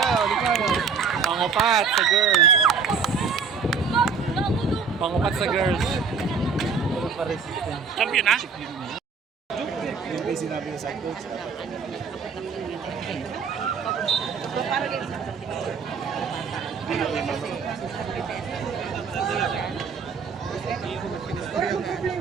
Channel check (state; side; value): quieter; left; 5.6 dB